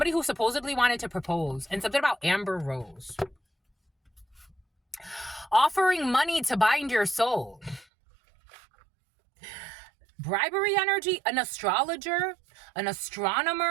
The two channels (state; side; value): drops out; left; at 7.9 s